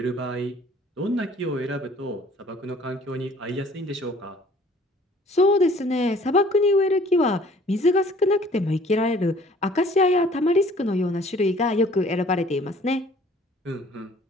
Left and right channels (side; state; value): both; normal; correlation 0.54